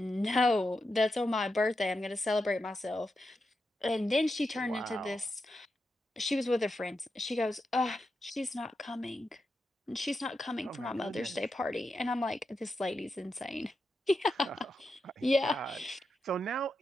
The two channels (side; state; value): both; normal; correlation 0.87